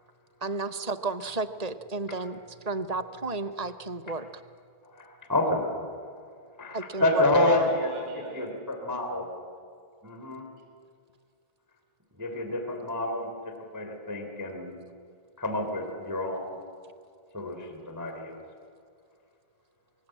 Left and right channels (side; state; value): left; late; 1.8 ms